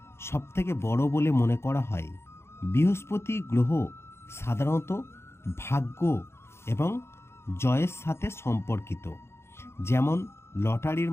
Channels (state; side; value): late; right; 0.12 ms